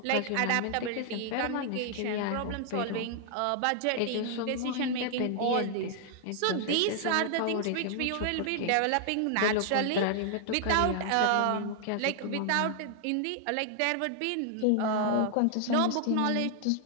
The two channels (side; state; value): both; different; correlation 0.00